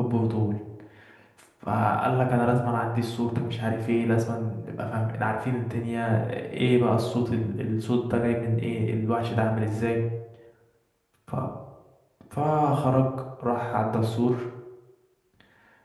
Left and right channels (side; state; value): both; identical; correlation 1.00